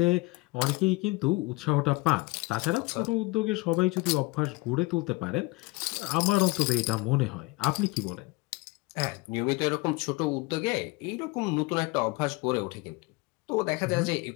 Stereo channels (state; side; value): quieter; right; 23.5 dB